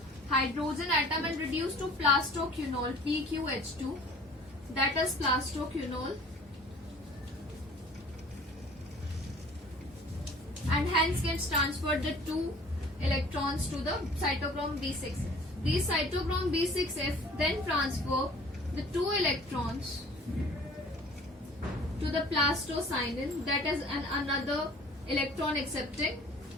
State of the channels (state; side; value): normal; both; correlation 0.49